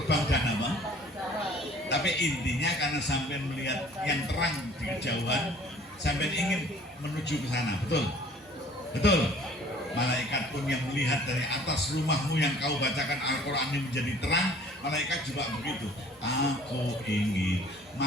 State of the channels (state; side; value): normal; both; correlation 0.52